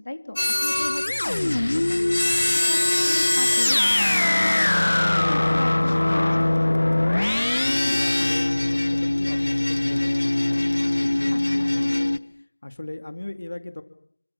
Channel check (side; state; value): both; inverted; correlation -1.00